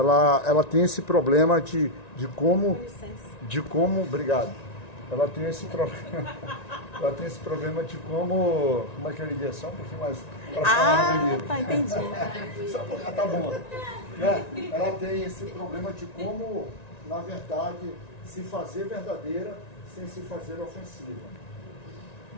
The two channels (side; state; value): right; late; 1.9 ms